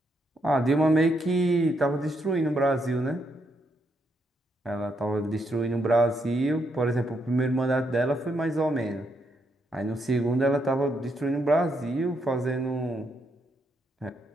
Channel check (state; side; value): normal; both; correlation 0.77